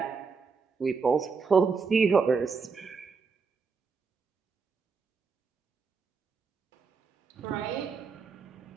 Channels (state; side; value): quieter; left; 5.1 dB